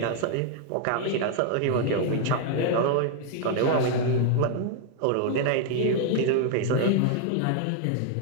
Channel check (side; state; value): both; different; correlation 0.00